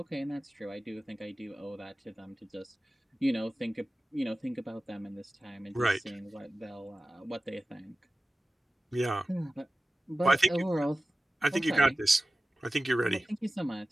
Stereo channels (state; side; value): normal; both; correlation 0.96